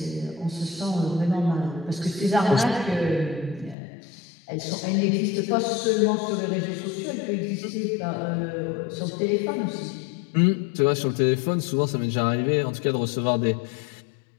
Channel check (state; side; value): drops out; right; at 3.8 s